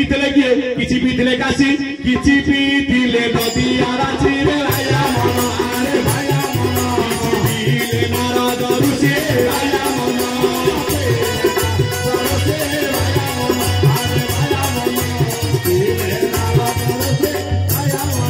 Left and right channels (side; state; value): both; identical; correlation 1.00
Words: किए किछि पीथिले काशी किछि पीथिले नदी आराची रे आया मन आरे भाया मन किछि पीले नारद ऋषि आया मन